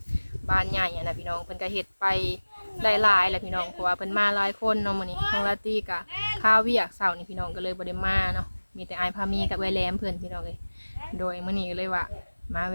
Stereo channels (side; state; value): both; inverted; correlation -1.00